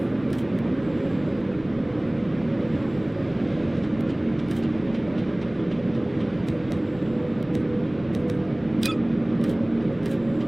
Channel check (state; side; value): noise; left; rumble, 21 dB below the sound